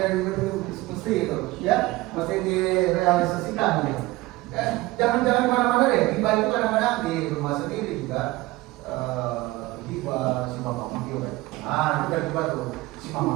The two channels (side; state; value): left; quieter; 19.6 dB